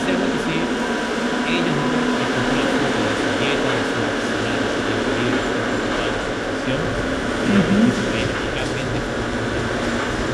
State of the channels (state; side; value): identical; both; correlation 1.00